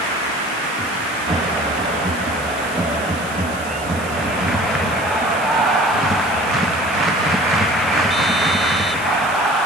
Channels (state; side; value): noise; right; hiss, 16 dB below the sound